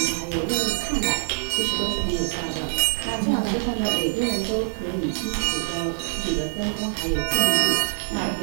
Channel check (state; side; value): silent; left; digital silence